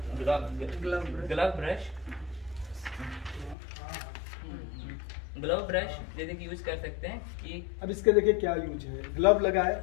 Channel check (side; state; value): right; drops out; at 3.6 s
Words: ग्लव ब्रश जैसे कि यूज कर सकते हैं कि अब इसके देखिए क्या यूज है। ग्लव लगाए